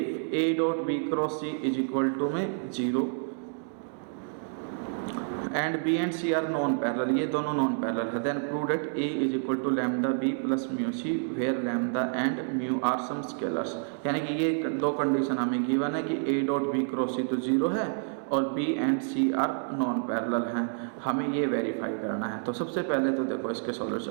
A dot B cross C is equal to में 0 and B and C are non parallel, ये दोनों नॉन पैरेलल है, then prove that A is equal to lambda B plus mu C where lambda and mu are some scalars. यानी कि ये दो कंडीशन हमें गिवन है कि A dot B cross C तो 0 है और B and C are non parallel हैं, हमें ये वेरीफाई करना है। तो सबसे पहले तो देखो इसके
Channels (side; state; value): left; silent; digital silence